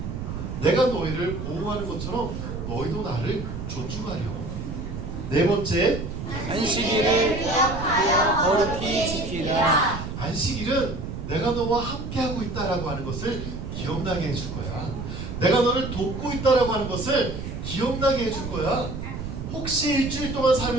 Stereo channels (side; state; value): right; noise; rumble, 7 dB below the sound